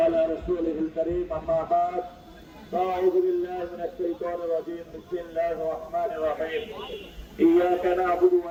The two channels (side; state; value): both; identical; correlation 1.00